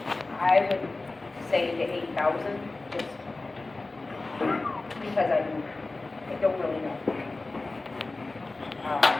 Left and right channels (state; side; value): quieter; right; 3.3 dB